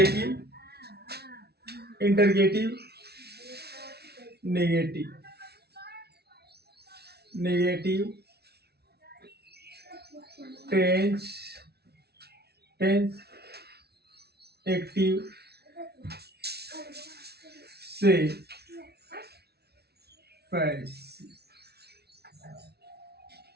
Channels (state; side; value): late; left; 0.47 ms